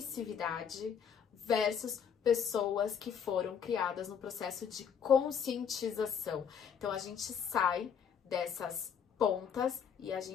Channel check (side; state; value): right; quieter; 7.5 dB